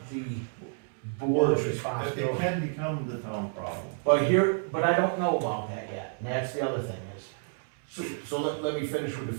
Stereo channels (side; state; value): left; silent; digital silence